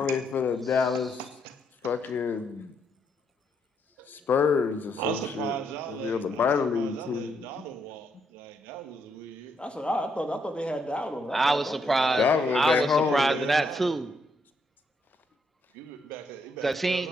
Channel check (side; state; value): both; normal; correlation 0.75